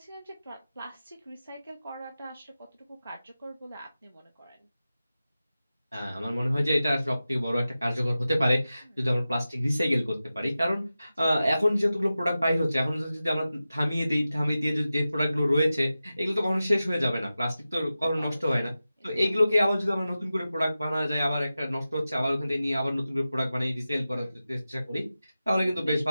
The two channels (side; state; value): both; inverted; correlation -0.94